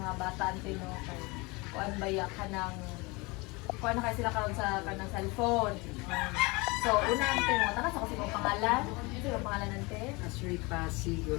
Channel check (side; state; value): right; quieter; 25.7 dB